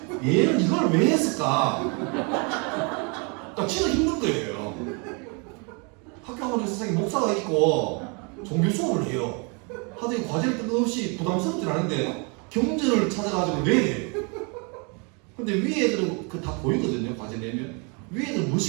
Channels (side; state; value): left; quieter; 33.6 dB